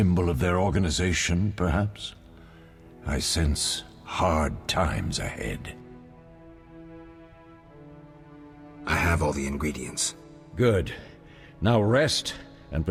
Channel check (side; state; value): both; identical; correlation 1.00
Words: of their organization, perhaps? I sense hard times ahead. I have all the ingredients. Good. Now rest and